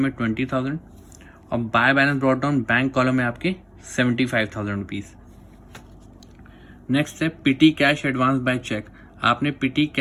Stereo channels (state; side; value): identical; both; correlation 1.00